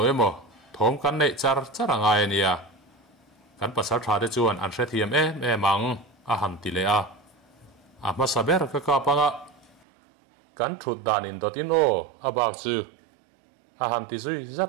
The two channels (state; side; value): drops out; left; at 9.8 s